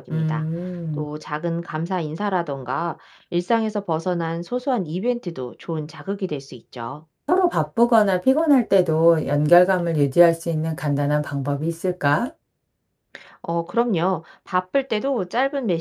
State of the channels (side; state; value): both; identical; correlation 1.00